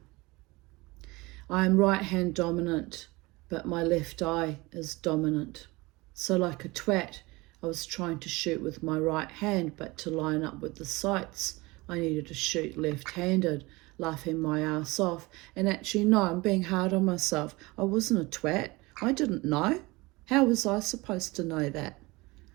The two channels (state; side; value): quieter; left; 22.8 dB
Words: I am right hand dominant, but my left eye is dominant. So like a twat, I was trying to shoot with my right hand, but to line up with the sights, I needed to shoot left-handed, laughing my ass off. And actually, no, I'm being hard on myself. I wasn't a twat. I didn't know. How was I supposed to know that?